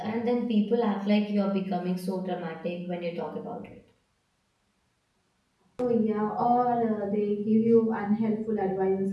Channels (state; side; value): identical; both; correlation 1.00